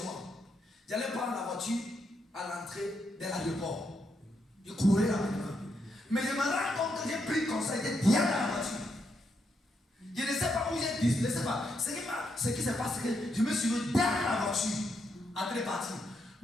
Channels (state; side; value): normal; both; correlation 0.80